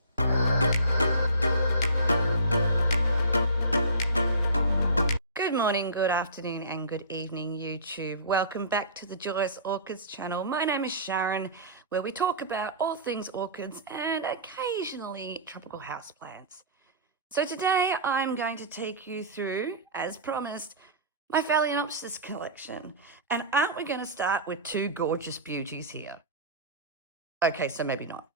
Good morning, good afternoon, and good evening, YouTube. Welcome back to the Joyous Orchids channel. My name is Sharon, where we talk about all things orchids and occasionally tropical houseplants. So today I'm going to take you through, as promised, my Phalaenopsis collection. And aren't we going to start with two gorgeous beauties here? Okay, so maybe not.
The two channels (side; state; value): both; inverted; correlation -0.34